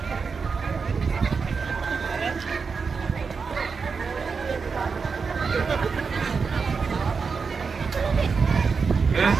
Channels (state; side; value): quieter; left; 5.2 dB